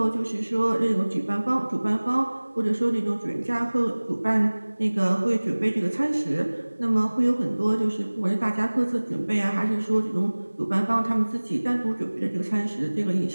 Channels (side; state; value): both; inverted; correlation -1.00